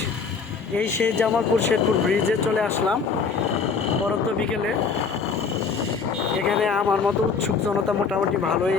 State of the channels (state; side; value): quieter; right; 5.3 dB